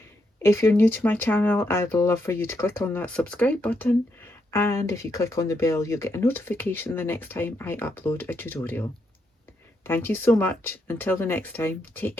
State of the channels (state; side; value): normal; both; correlation 0.80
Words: If you're new to my channel, I'd love for you to click on that subscribe button, and if you click on the bell, you'll get a notification the next time I upload a tutorial. Thank you so much. Until the next time, take